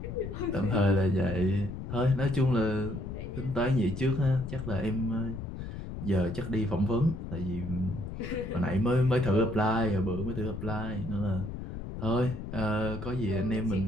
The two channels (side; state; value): left; noise; rumble, 7 dB below the sound